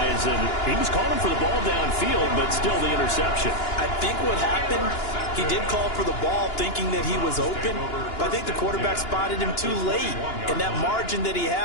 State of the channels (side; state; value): right; late; 2.9 ms